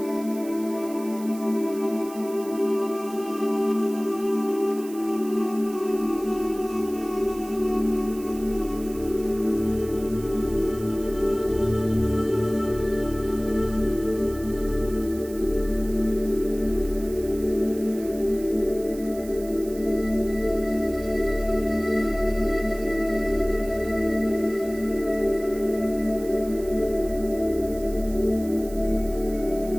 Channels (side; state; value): right; noise; hiss, 18 dB below the sound